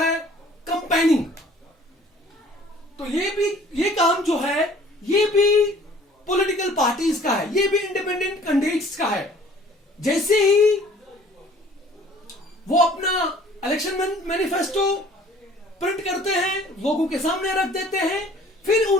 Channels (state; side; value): normal; both; correlation 0.53